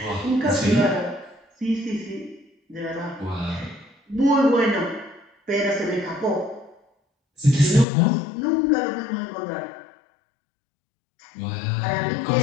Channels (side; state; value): right; drops out; at 7.9 s